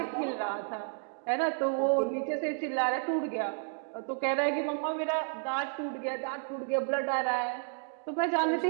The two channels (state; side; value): silent; left; digital silence